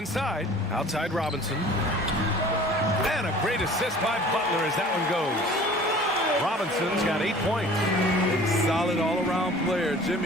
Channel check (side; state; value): both; normal; correlation 0.47